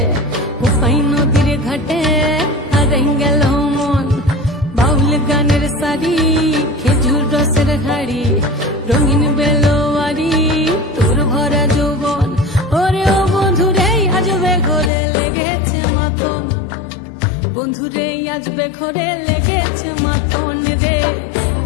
কোপাই নদীর ঘাটে হারাই গেল মন বাউল গানের সারি খেজুর রসের হাড়ি রঙিন বেলোয়ারি তোর ভরা যৌবন ওরে ও বন্ধুরে আজবে ঘরে লেগেছে মাতন বন্ধুরে আজবে ঘরে লেগেছে মাতন রে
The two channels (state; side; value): drops out; right; at 14.9 s